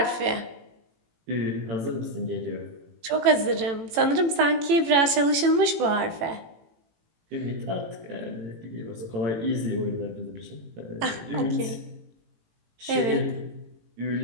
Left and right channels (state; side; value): late; left; 18 ms